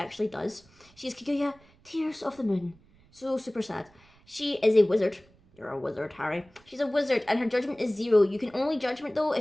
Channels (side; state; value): right; noise; rumble, 29 dB below the sound